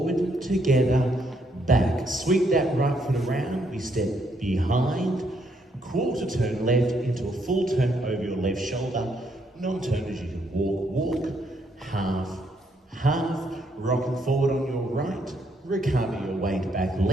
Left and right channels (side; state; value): both; normal; correlation 0.73